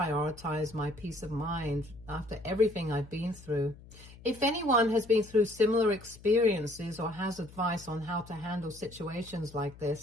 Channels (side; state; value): left; noise; hum, 20 dB below the sound